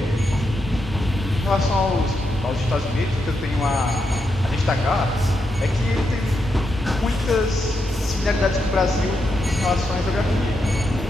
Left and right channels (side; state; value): both; normal; correlation 0.83